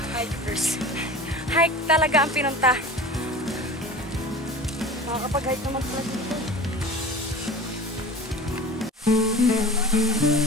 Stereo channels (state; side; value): normal; both; correlation 0.37